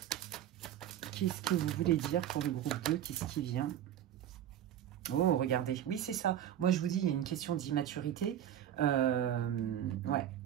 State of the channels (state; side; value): quieter; left; 10.9 dB